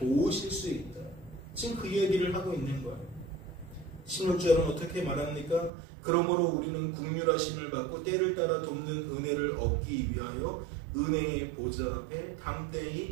수 있다. 지금 그 이야기를 하고 있는 거예요. 16절은 어떻게 말합니까? 그러므로 우리는 긍휼하심을 받고 때를 따라 돕는 은혜를 얻기 위하여 은혜의 보좌 앞에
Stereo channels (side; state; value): left; drops out; at 5.7 s